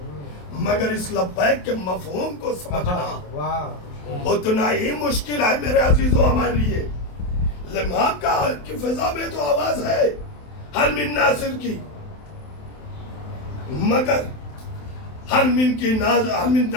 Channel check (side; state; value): right; late; 27 ms